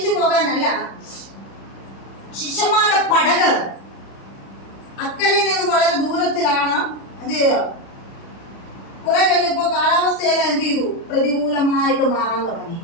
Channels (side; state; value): right; late; 36 ms